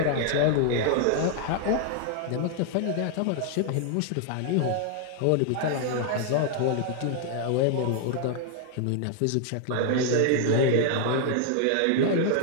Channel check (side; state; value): both; different; correlation 0.00